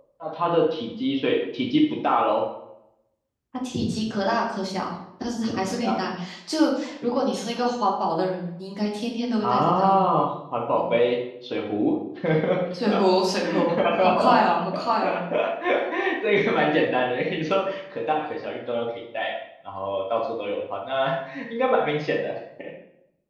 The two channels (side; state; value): both; identical; correlation 1.00